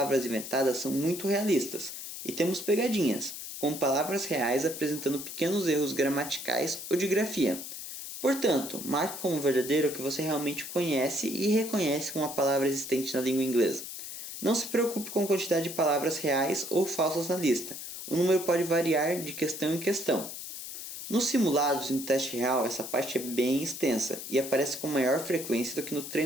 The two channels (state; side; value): noise; left; hiss, 9 dB below the sound